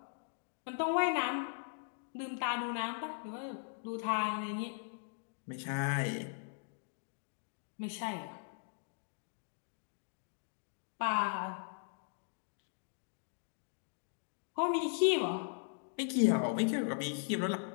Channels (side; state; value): right; silent; digital silence